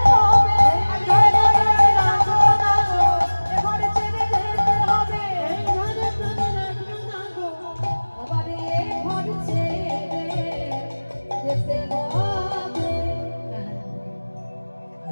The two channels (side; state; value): both; inverted; correlation -1.00